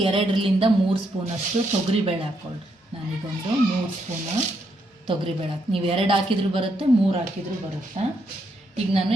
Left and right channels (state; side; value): normal; both; correlation 0.77